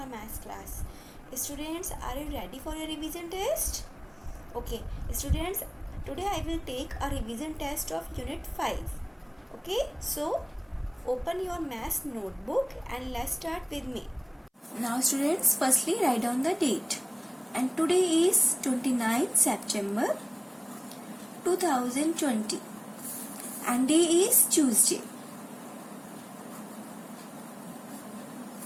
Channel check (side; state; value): both; identical; correlation 1.00